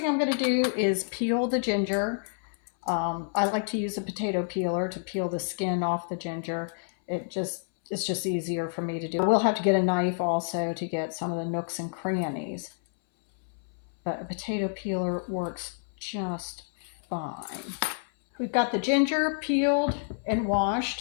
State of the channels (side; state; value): right; silent; 58 dB below the other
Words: I'm going to do is peel the ginger. I like to use a potato peeler to peel the skin off the ginger. It's just easier for me to do. We'll have to get a knife also to get some of the nooks and crannies, but a potato peeler works just fine. We've got the ginger peeled and